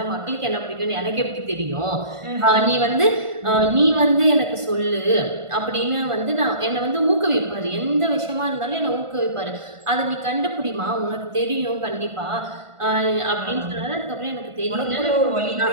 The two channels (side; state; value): left; late; 1.5 ms